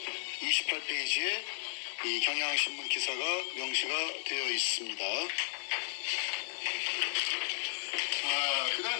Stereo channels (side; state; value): right; silent; 55 dB below the other